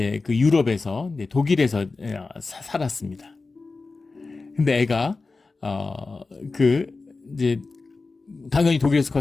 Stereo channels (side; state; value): right; quieter; 3.8 dB